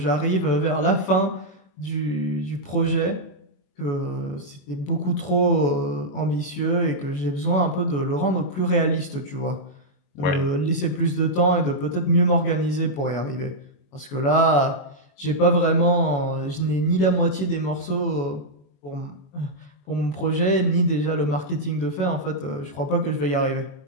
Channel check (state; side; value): late; right; 21 ms